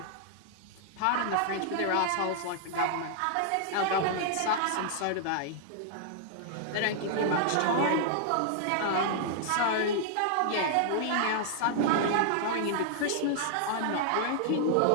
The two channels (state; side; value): different; both; correlation -0.01